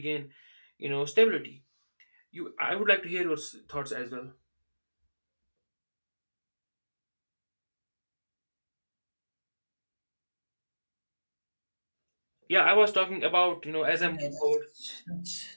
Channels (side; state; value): both; inverted; correlation -1.00